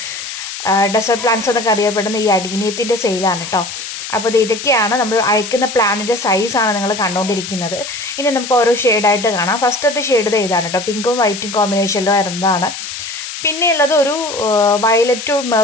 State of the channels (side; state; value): left; noise; hiss, 8 dB below the sound